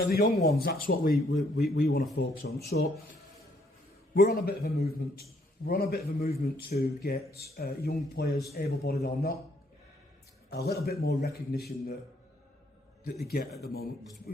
the young ones, that's what we want to focus on. So we're on a bit of a movement. We're on a bit of a movement to get young players, able-bodied or not, a little bit more recognition that they get at the moment.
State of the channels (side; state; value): both; normal; correlation 0.68